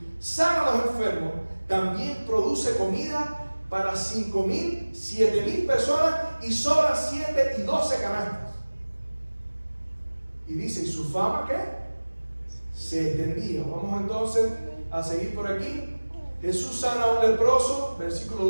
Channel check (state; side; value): inverted; both; correlation -1.00